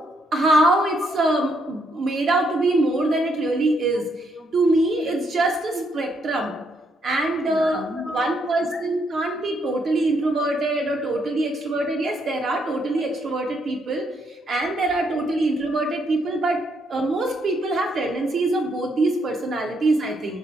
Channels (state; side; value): normal; both; correlation 0.74